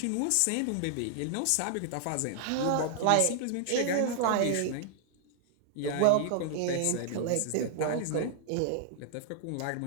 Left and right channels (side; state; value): both; different; correlation -0.01